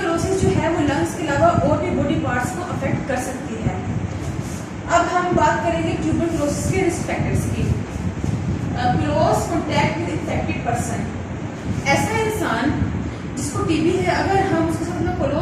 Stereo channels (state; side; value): identical; both; correlation 1.00